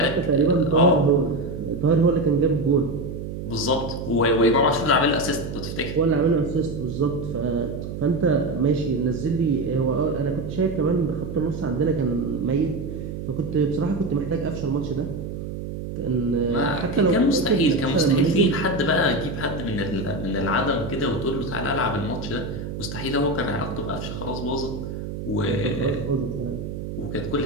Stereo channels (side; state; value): right; noise; hum, 7 dB below the sound